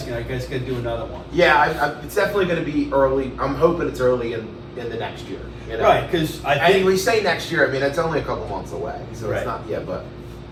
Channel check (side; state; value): both; identical; correlation 1.00